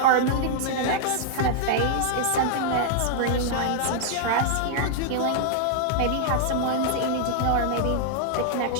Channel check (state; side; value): different; both; correlation -0.01